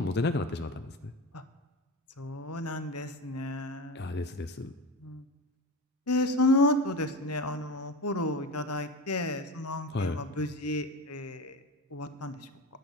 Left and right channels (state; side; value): normal; both; correlation 0.26